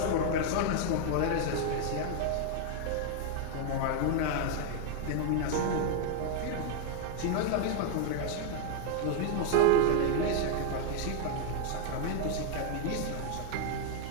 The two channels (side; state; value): both; different; correlation 0.00